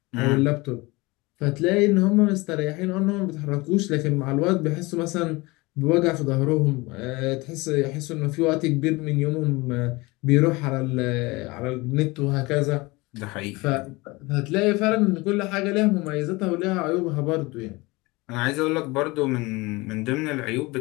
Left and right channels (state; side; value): quieter; right; 23.4 dB